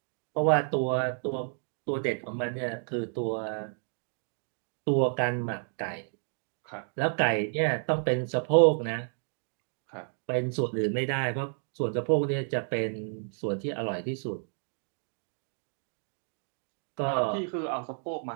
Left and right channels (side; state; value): left; silent; 57 dB below the other